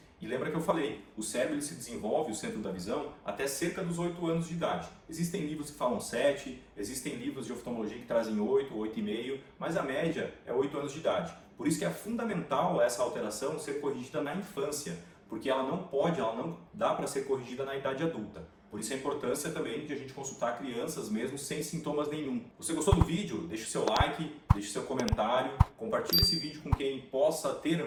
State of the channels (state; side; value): identical; both; correlation 1.00